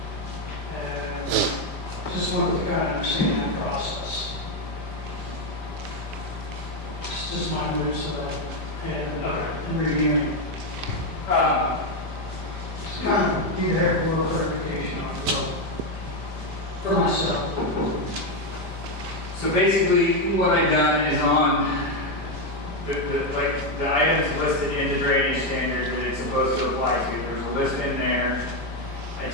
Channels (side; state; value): left; late; 5.0 ms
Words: And just wanted to kind of understand that process. It's just my moves that I had in reviewing. Just kind of need to have a little clarification on it, so, for myself. So basically, what I've done is on the items listed in the drainage standards that it's supposed to apply to. There's a list in there. I